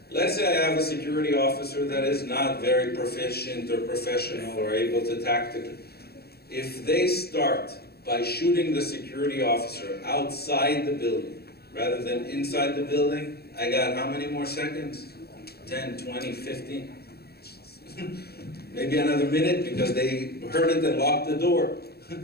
Let's say I have a security officer that is not very proficient or professional or able to tactically. If they start by shooting the security officer outside the building rather than inside the building, I got how many more seconds? 10, 20, 15. Maybe another minute because they heard it and locked the door.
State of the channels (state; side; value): late; right; 0.46 ms